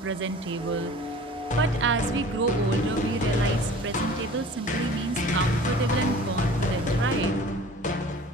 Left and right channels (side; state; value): both; normal; correlation 0.44